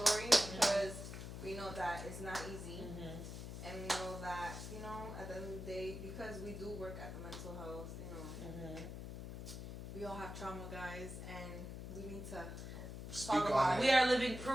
because we know that it's not easy. And we know that, you know, at the end of the day, because we do work at the mental health, you know, we all have trauma, guys, and we need to Speak talk on about it. We are living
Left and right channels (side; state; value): left; noise; hum, 8 dB below the sound